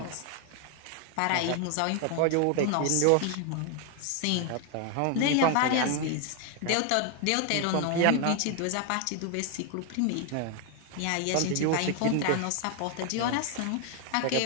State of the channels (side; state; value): both; different; correlation 0.00